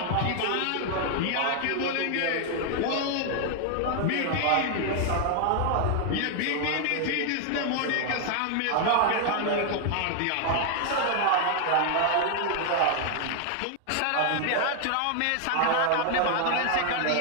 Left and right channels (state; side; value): different; both; correlation 0.00